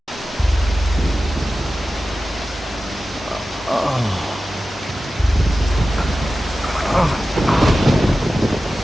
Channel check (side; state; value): both; normal; correlation 0.94